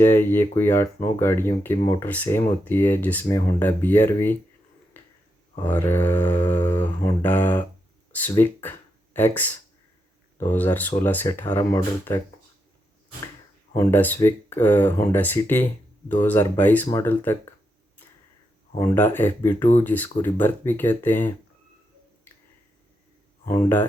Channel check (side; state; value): both; normal; correlation 0.83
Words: है। ये कोई 8-9 गाड़ियों की मोटर सेम होती है, जिसमें होंडा BRV और होंडा स्विक एक्स 2016 से 18 मॉडल तक, Honda Civic Honda City 2022 model तक, होंडा FB2 जिसको रिबर्थ भी कहते हैं, Honda